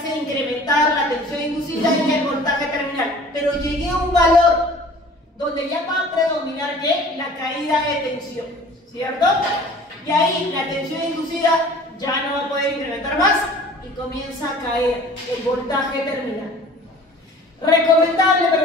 incrementar la tensión inducida y el voltaje terminal. Pero llegué a un valor donde ya va a predominar ¿qué? La caída de tensión, ¿cierto? Y ahí la tensión inducida ya no va a poder incrementar más y comienza a caer el voltaje terminal. ¿Recomendable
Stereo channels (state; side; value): normal; both; correlation 0.47